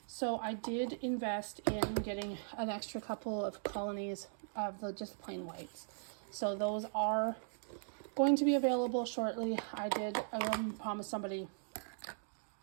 So I did invest in getting an extra couple of colonies of the just plain whites. So those are going to be available shortly. I did promise somebody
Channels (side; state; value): left; silent; digital silence